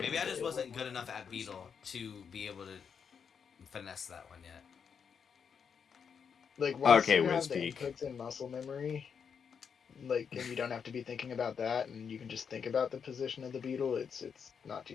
maybe I good. just wasn't good enough at beetle to be able to finesse that one yet. Like once Okay, you have the Wispeak. inputs in muscle memory, like, and you don't have to be thinking about that, and you can just think about the position of the beetle. It's not too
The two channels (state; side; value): quieter; right; 6.7 dB